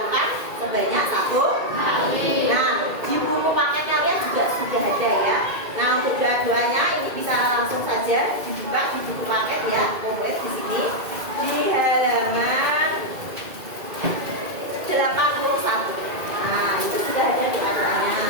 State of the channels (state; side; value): late; left; 2.2 ms